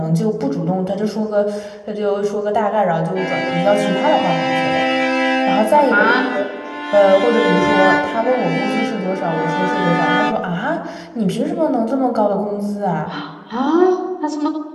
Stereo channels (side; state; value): both; identical; correlation 1.00